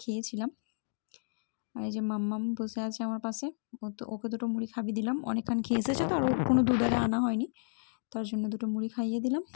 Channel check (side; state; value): right; silent; digital silence